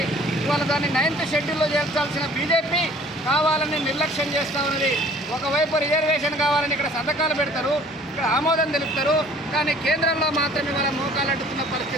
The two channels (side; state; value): both; normal; correlation 0.52